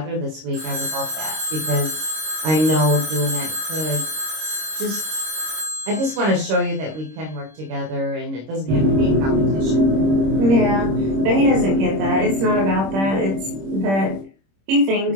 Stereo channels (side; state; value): left; late; 26 ms